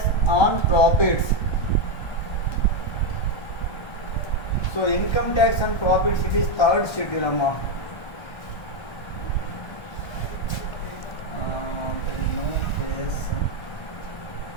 on profits. So income tax on profits, it is third schedule amount. There is no case.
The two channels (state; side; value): late; right; 1.3 ms